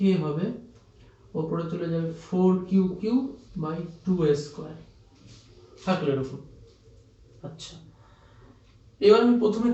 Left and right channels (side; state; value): both; identical; correlation 1.00